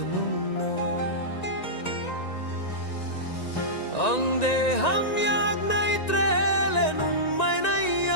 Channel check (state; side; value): late; right; 1.9 ms